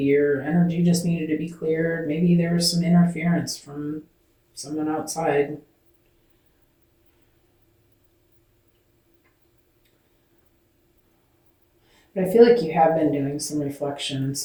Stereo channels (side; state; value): both; identical; correlation 1.00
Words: your energy just needed to be cleared. Maybe there was some interference from someone outside. But I feel like you have been doing some reflection and